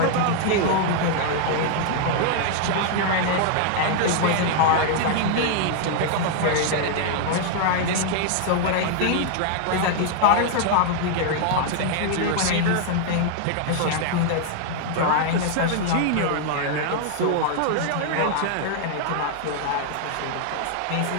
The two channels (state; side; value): different; both; correlation -0.01